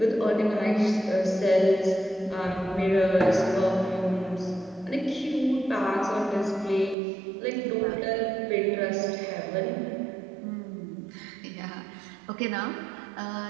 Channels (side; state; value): left; drops out; at 7.0 s